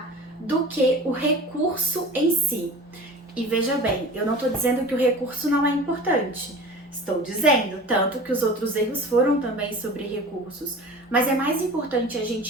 do que o recurso em si. E veja bem, eu não estou dizendo que o recurso não é importante. Estou dizendo, tanto que os outros erros foram também sobre recursos. Mas é mais importante a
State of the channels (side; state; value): both; normal; correlation 0.38